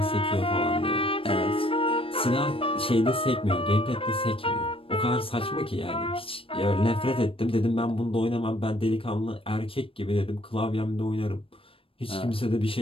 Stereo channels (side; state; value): right; late; 0.26 ms